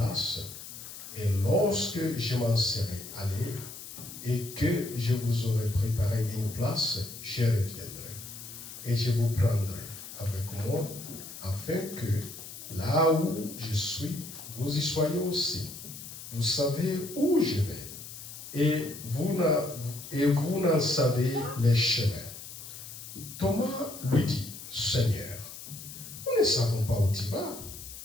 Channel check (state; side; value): noise; left; hiss, 12 dB below the sound